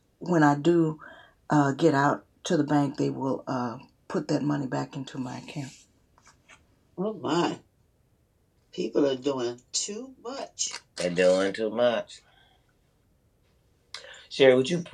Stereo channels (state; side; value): identical; both; correlation 1.00